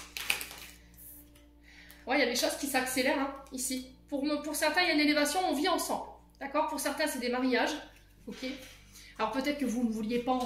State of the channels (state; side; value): identical; both; correlation 1.00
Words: Ouais, il y a des choses qui s'accélèrent hein, ici. Pour certains, il y a une élévation, on vit ensemble. D'accord? Pour certains, c'est des mariages. Ok? Alors peut-être que vous ne vouliez pas